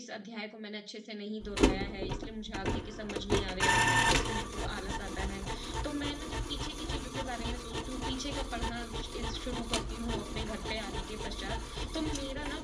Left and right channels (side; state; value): both; identical; correlation 1.00